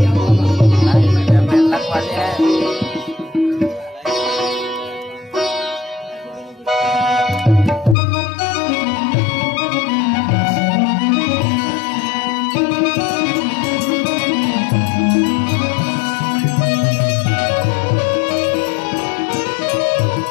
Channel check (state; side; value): drops out; right; at 8.0 s